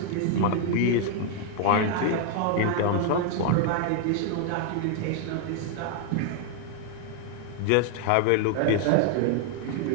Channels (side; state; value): both; different; correlation 0.00